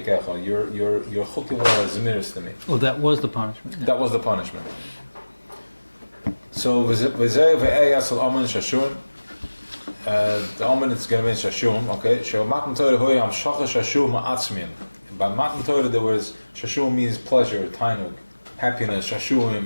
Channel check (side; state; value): both; inverted; correlation -1.00